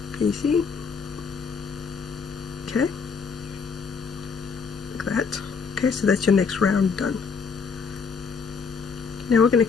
Can you see? Okay, like that. Okay, so that's your next round done. Now we're going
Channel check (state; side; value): quieter; right; 5.5 dB